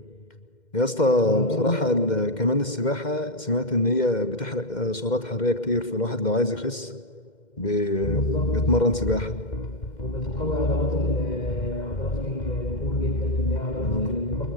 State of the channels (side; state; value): right; late; 2.1 ms